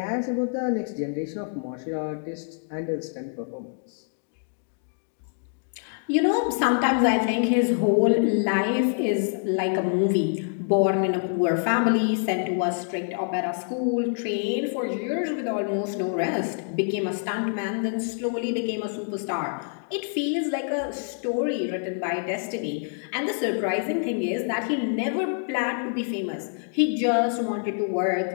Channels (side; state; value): right; silent; 61 dB below the other